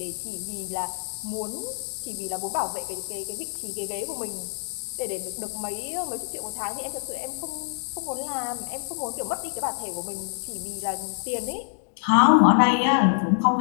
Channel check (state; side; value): silent; right; digital silence